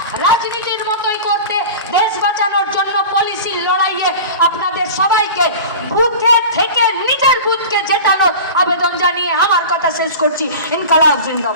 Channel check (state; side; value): inverted; both; correlation -0.35